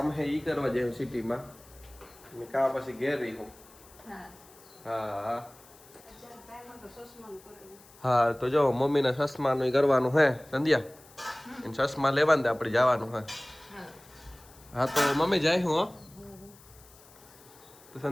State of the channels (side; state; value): left; noise; hiss, 24 dB below the sound